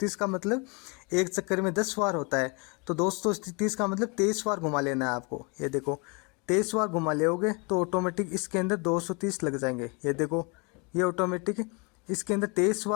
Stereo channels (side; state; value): right; quieter; 30.4 dB